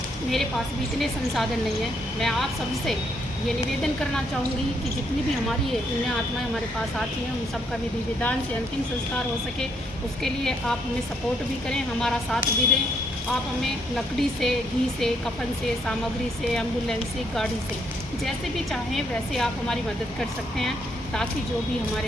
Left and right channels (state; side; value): normal; both; correlation 0.72